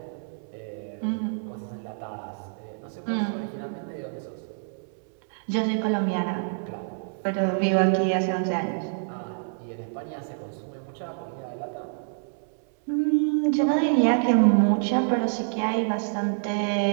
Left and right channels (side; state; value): left; silent; 60 dB below the other